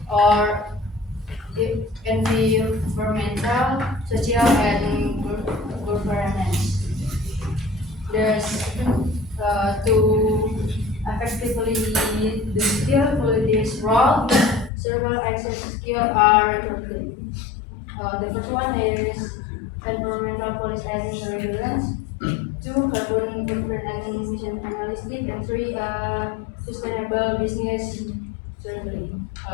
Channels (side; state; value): right; drops out; at 14.7 s